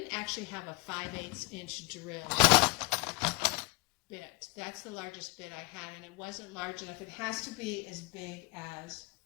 actually have a 5/8 inch drill bit. That's the largest bit I had, and it wasn't large enough. It has to be as big as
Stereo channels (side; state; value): right; quieter; 25.1 dB